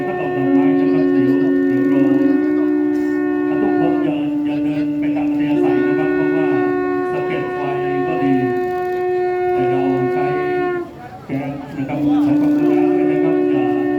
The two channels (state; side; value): identical; both; correlation 1.00